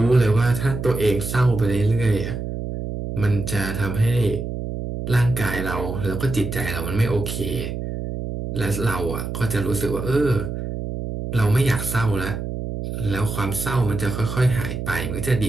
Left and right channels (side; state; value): right; noise; hum, 5 dB below the sound